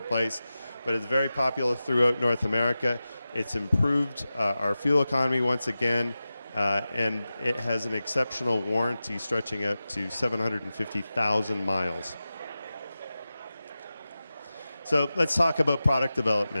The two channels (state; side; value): inverted; both; correlation -0.94